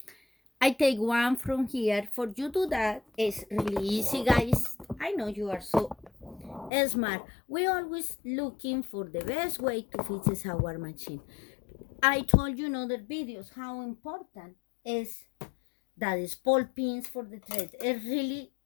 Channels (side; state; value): right; drops out; at 6.7 s